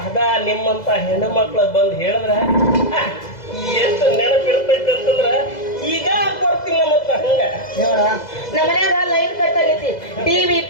ಅದ ನಿಮ್ಮಂತ ಹೆಣ್ಣು ಮಕ್ಳು ಬಂದ್ ಹೇಳಿದ್ರ ಎಷ್ಟು ನೆನಪಿರ್ತೈತಿ ಅಂತಂದ್ರ ಈಗ ಕೊಡ್ತೀನಿ ಮತ್ತ ಹಂಗ ನೋಡ ನಮ್ಮ ಮನ್ಯಾಗ ಲೈನ್ ಕಟ್ ಆಗೈತಿ ಟಿವಿ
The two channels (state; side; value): late; right; 2.0 ms